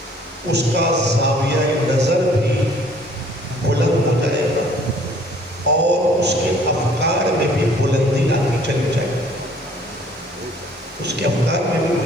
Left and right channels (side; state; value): both; normal; correlation 0.57